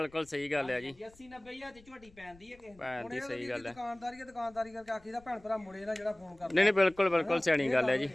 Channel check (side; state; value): left; noise; rumble, 26 dB below the sound